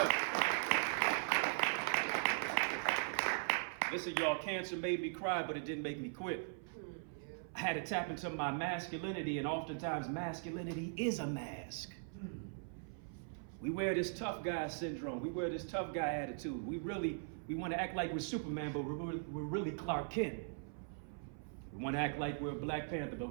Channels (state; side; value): silent; left; 51 dB below the other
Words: Listen, y'all, cancer made me cry, but it didn't make me quit. I had to tap into my masculinity, and oftentimes masculinity is a mask. We wear this tough guy syndrome. We wear this tough guy attitude. We want to act like we're Superman, but we're really Clark Kent. We want to act like we're Black Panther, but